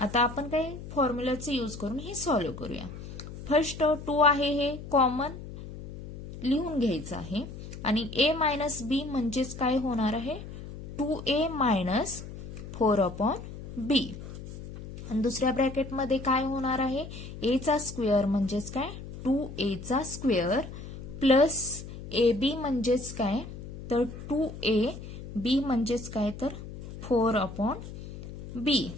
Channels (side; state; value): left; noise; hum, 11 dB below the sound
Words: आपण काही फॉर्म्युलाचे यूज करून हे सॉल्व्ह करूया. फर्स्ट 2 आहे हे कॉमन लिहून घ्यायचं आहे आणि a मायनस b म्हणजेच काय होणार आहे 2a मायनस 4 अपॉन b. आणि दुसऱ्या ब्रॅकेटमध्ये काय होणार आहे a चा स्क्वेअर म्हणजेच काय 2a चा स्क्वेअर प्लस ab म्हणजेच काय तर 2a b म्हणजेच काय तर 4 अपॉन b,